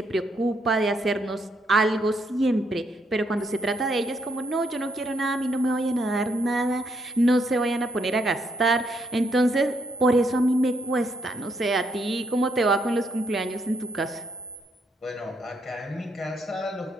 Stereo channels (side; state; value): both; normal; correlation 0.75